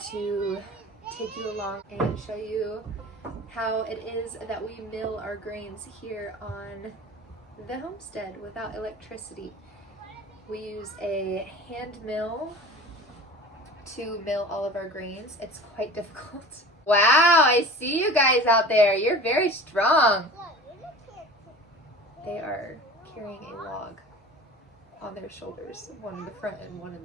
to take you along and show you how it is that we mill our grains here on the homestead without electricity. We use a hand mill to mill all of our grains. It's quite difficult. Wow, I see you guys out there. You're very strong. They are carrying a log on their shoulders, one in the front and one in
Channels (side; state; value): both; normal; correlation 0.38